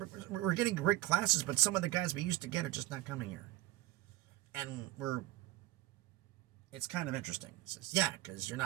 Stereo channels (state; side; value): quieter; left; 16.9 dB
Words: We're getting great classes, but some of the guys we used to get are just not coming here. And it's kind of interesting. It says, yeah, because you're